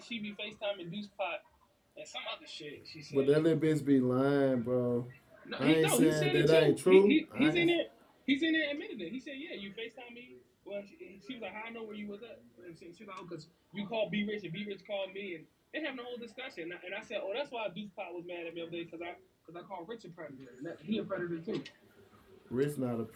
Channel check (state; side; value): identical; both; correlation 1.00